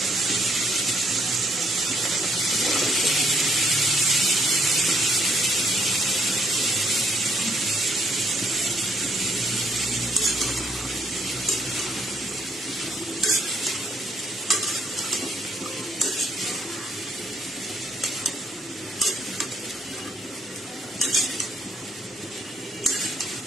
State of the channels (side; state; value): both; normal; correlation 0.70